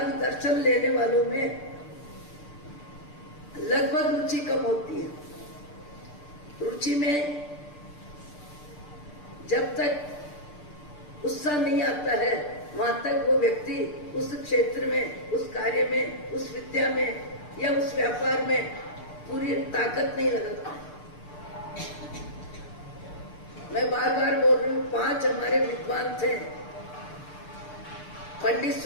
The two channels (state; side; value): late; right; 6.8 ms